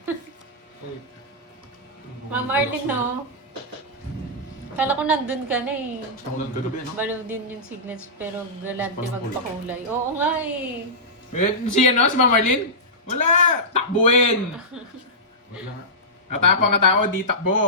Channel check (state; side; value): normal; both; correlation -0.15